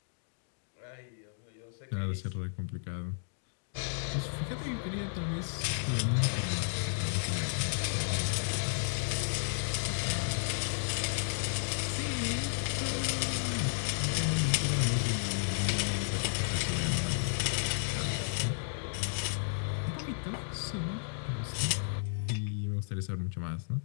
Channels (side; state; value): right; silent; digital silence